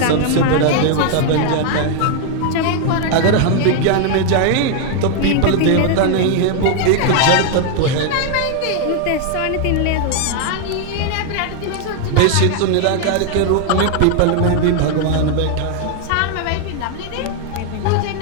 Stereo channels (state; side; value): different; both; correlation 0.00